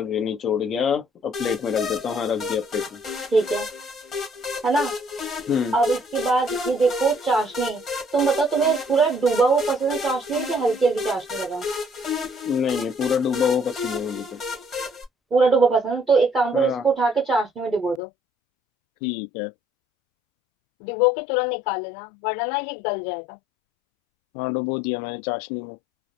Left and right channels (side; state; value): right; drops out; at 18.0 s